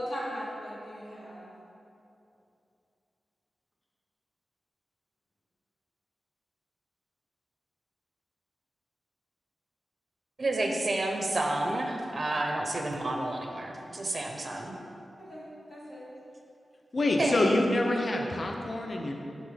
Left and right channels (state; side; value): normal; both; correlation 0.92